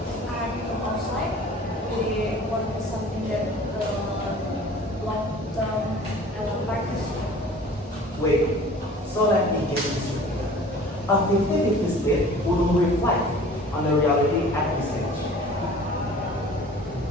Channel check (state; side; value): normal; both; correlation 0.46